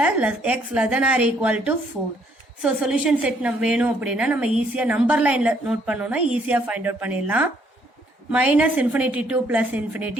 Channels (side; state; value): both; normal; correlation 0.67